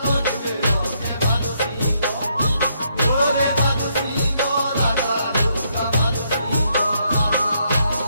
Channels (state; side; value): inverted; both; correlation -0.74